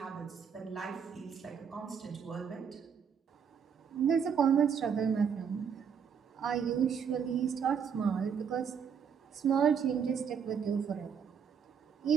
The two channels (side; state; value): left; quieter; 7.1 dB